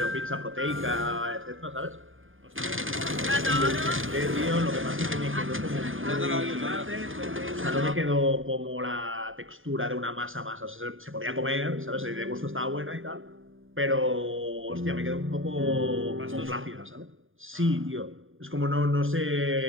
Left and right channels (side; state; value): left; late; 0.59 ms